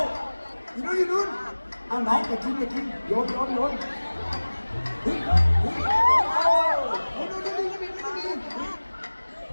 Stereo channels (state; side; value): inverted; both; correlation -1.00